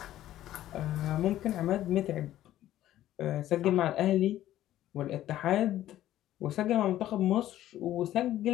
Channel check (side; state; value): right; quieter; 13.4 dB